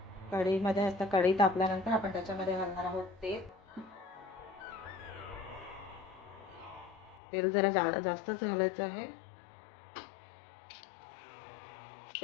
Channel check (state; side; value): drops out; right; at 7.2 s